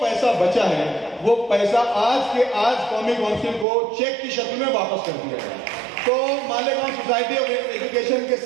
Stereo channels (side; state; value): left; drops out; at 3.7 s